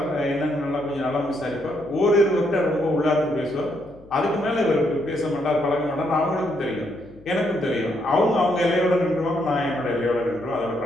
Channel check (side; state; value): left; noise; hum, 24 dB below the sound